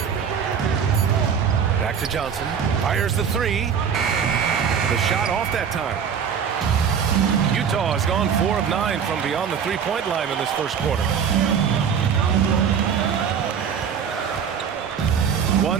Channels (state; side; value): quieter; left; 7.3 dB